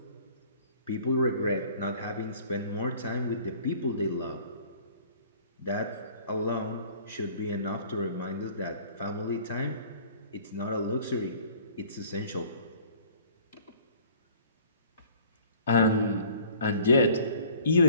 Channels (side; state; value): both; inverted; correlation -0.52